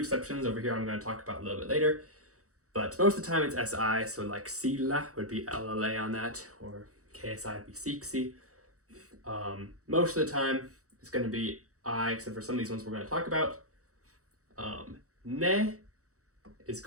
over here I'm going to talk about a little bit later. But most of the time it's SI, so like sillä would be LLA on that, or KSI would be siksi. Most of the time it's going to be I, except for some of these ones we're going to talk about. Ne is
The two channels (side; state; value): left; late; 0.65 ms